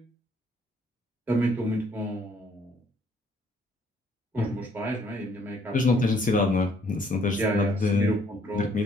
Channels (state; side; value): normal; both; correlation 0.64